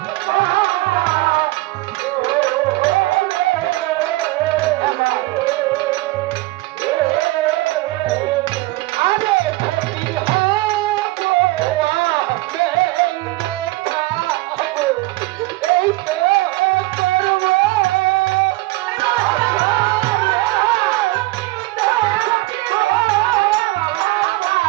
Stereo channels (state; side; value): quieter; left; 20.7 dB